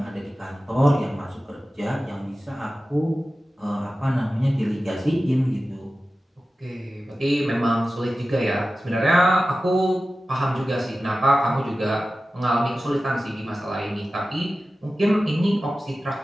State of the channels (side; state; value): both; normal; correlation 0.95